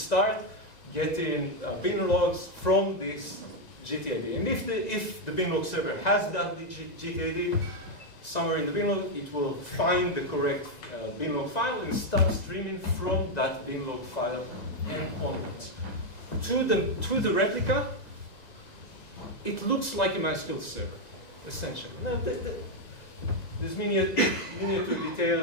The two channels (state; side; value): late; right; 2.0 ms